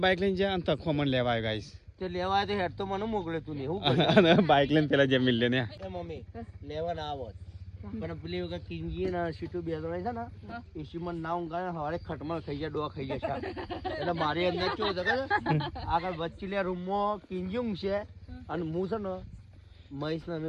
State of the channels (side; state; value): both; identical; correlation 1.00